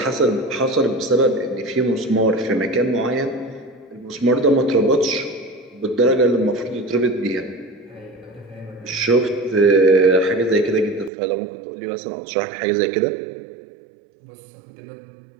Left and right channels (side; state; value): left; drops out; at 11.1 s